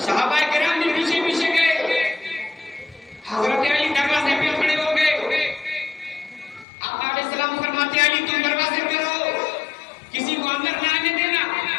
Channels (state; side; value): drops out; right; at 6.7 s